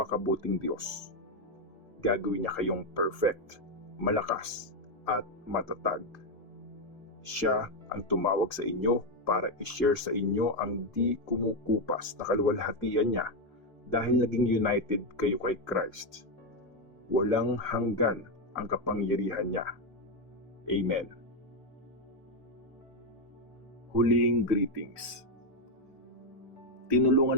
Diyos. Gagawin niya kayong perfect, malakas, at matatag. Siya ang tumawag sa inyo para i-share sa inyo ang di kumukupas na kaluwalhatian niya dahil naging united kayo kay Christ. Walang hanggan ang kapangyarihan niya. Amen. Huling greetings.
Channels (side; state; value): both; normal; correlation 0.05